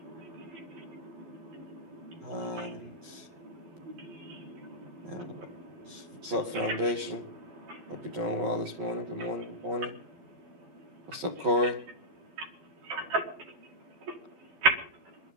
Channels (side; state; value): left; late; 11 ms